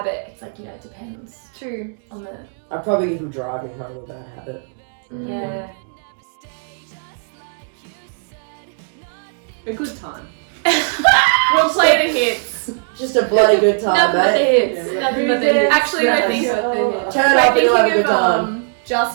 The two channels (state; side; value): silent; left; 66 dB below the other